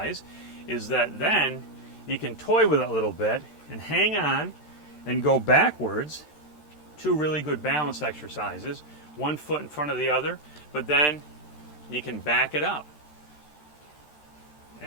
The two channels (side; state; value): right; late; 13 ms